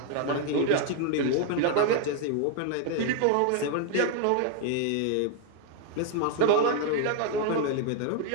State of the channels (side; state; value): both; different; correlation 0.00